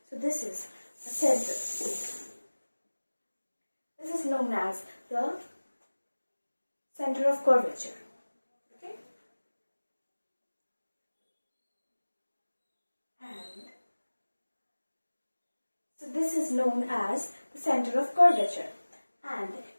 So this is a center. This is known as the center of curvature. Okay? And so this is known as the center of curvature. And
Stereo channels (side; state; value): both; inverted; correlation -1.00